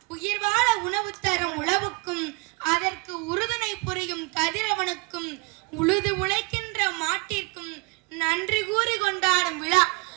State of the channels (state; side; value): quieter; left; 30.2 dB